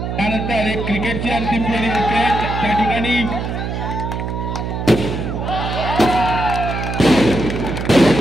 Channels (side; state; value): right; noise; hum, 4 dB below the sound